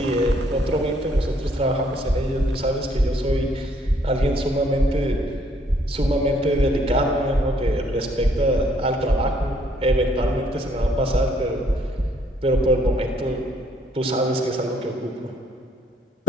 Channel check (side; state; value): both; normal; correlation 0.66